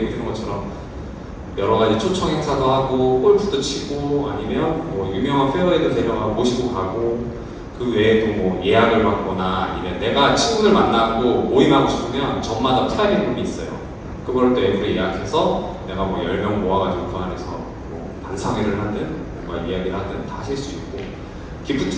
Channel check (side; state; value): both; identical; correlation 1.00